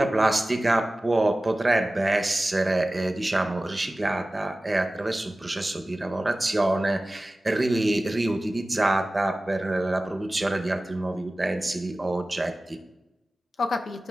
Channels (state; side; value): normal; both; correlation 0.97